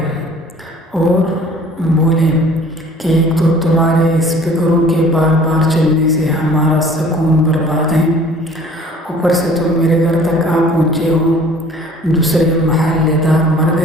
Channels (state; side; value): normal; both; correlation 0.50